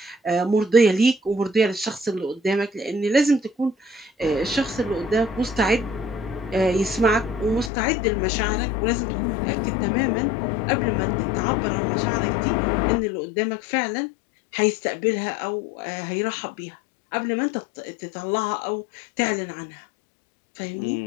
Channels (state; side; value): drops out; right; at 7.7 s